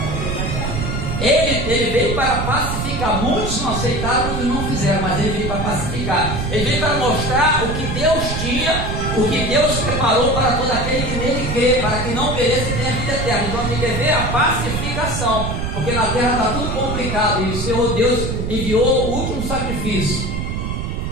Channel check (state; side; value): noise; right; rumble, 3 dB below the sound